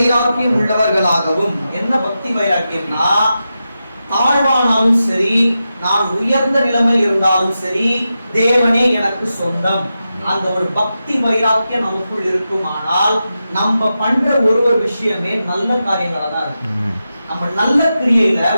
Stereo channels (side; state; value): both; inverted; correlation -0.90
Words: உள்ளவர்களாகவும். என்ன பக்தி வைராக்கியம்னா, தாழ்வானாலும் சரி, நான் உயர்ந்த நிலைமையில் இருந்தாலும் சரி, தேவனே எனக்கு சொந்தம். அந்த ஒரு பக்தி வைராக்கியம் நமக்குள் இருக்குமானால் நம்ம பண்ற ஒரு விஷயமே நல்ல காரியங்களா தான் இருக்கும். நம்ம நல்ல கிரியையில